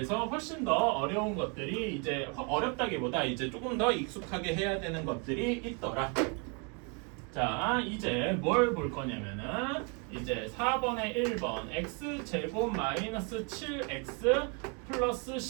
훨씬 더 어려운 것들이 이제 어렵다기보다 이제 조금 더 익숙하게 해야 되는 것들이 있더라. 자, 이제 뭘 볼 거냐면은 이제 4번에 1번 x제곱 마이너스 7x 플러스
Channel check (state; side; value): quieter; left; 34.1 dB